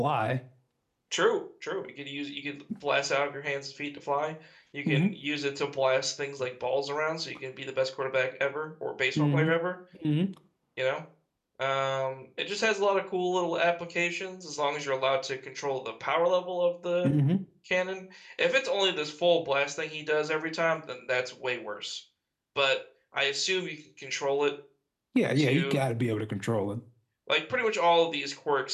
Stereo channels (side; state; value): both; identical; correlation 1.00